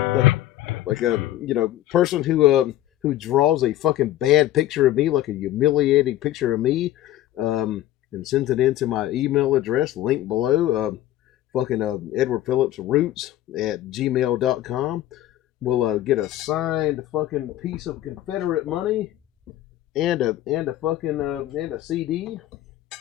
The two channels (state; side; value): quieter; right; 13.9 dB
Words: Person who draws a fucking bad picture of me, like a humiliating picture of me, and sends it into my email address, link below, Edward Phillips Roots at gmail.com. Will get a signed fucking piece of Confederate money and a CD.